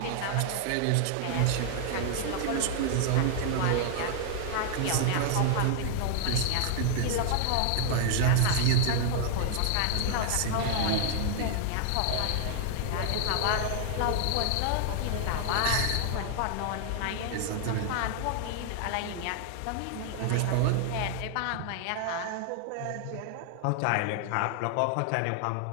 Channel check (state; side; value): different; both; correlation -0.01